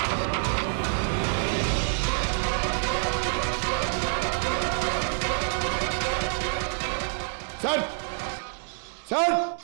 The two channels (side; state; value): left; silent; 60 dB below the other